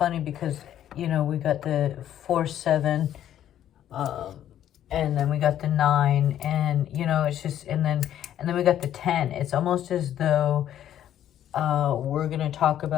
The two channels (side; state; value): right; quieter; 11.1 dB